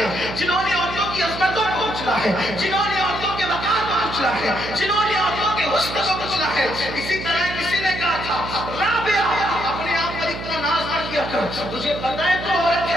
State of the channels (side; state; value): right; noise; hum, 9 dB below the sound